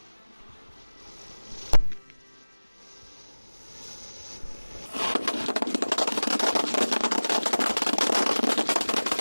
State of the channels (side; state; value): both; inverted; correlation -1.00